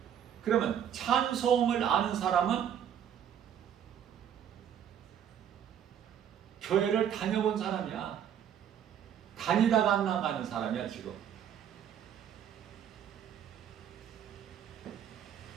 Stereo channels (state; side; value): quieter; left; 9.2 dB